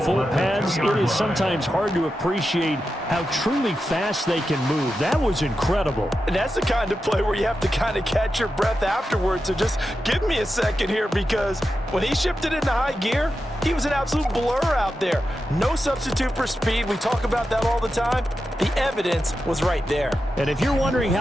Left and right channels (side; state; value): both; normal; correlation 0.90